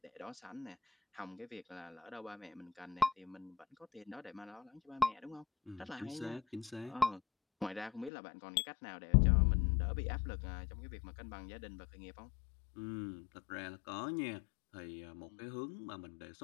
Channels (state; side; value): drops out; right; at 8.1 s